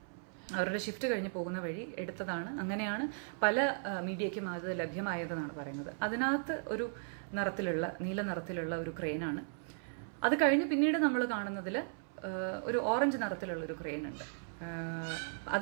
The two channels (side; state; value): left; silent; 54 dB below the other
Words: വഴി എടുത്തതാണ്. അങ്ങനെയാണ് പല മീഡിയയ്ക്കും അത് ലഭ്യമായതെന്നാണ് പറയുന്നത്. അതിനകത്ത് ഒരു നീല നിറത്തിലുള്ള ഒരു ക്രെയിനാണ്. അത് കഴിഞ്ഞ് പിന്നീട് നമ്മൾ കാണുന്നതിൽ ഒരു ഓറഞ്ച് നിറത്തിലുള്ള ഒരു ക്രെയിൻ ഉണ്ട്.